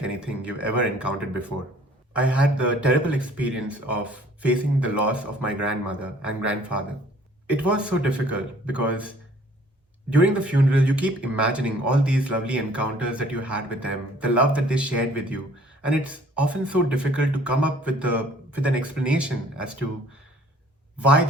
anything you've ever encountered before. I had the terrible experience of facing the loss of my grandmother and grandfather. It was so difficult because during the funeral, you keep imagining all these lovely encounters that you had with them, the love that they shared with you, and it's often so difficult to come up with an explanation as to why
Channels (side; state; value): both; normal; correlation 0.55